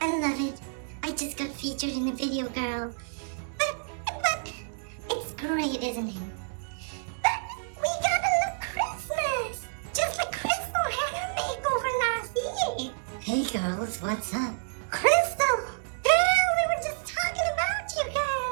love it. I just got featured in a video, girl. But it's great, isn't it? But we gotta look Christmas, just like Crystal had her makeover last year. Hey girls, what's up? Crystal, girl, we were just talking about you,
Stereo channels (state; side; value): silent; left; digital silence